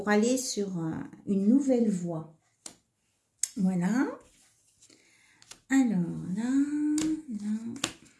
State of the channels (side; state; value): both; identical; correlation 1.00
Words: aller sur une nouvelle voie. Voilà. Alors là,